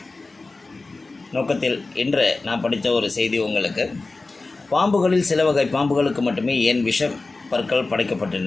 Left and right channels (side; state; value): right; quieter; 3.5 dB